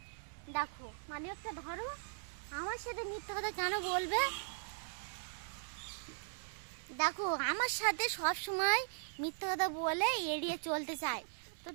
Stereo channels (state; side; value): silent; left; digital silence